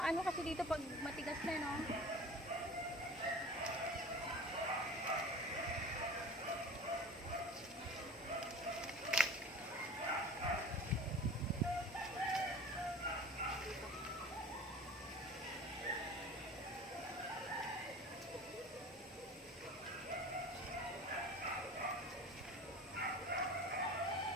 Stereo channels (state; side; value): normal; both; correlation 0.39